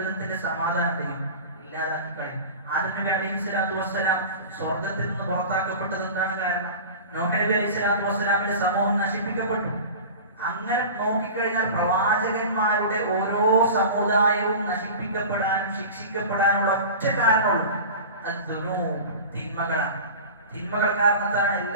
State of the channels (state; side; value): inverted; both; correlation -0.34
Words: സമാധാനത്തെയും ഇല്ലാതാക്കി കളയും. ആദം നബി അലൈഹി സ്വലാത്തു വസ്സലാം സ്വർഗത്തിൽ നിന്ന് പുറത്താക്കപ്പെട്ടത് എന്താണ് കാരണം? നോഹ് നബി അലൈഹി സ്വലാത്തു വസ്സലാമിന്റെ സമൂഹം നശിപ്പിക്കപ്പെട്ടു. അങ്ങനെ നോക്കിക്കഴിഞ്ഞാൽ പ്രവാചകന്മാരുടെ ഓരോ സമുദായവും നശിപ്പിക്കപ്പെടാനും ശിക്ഷിക്കപ്പെടാനുള്ള ഒറ്റ കാരണമുള്ളൂ, തിന്മകളാണ്. തിന്മകൾ കാരണത്താണ്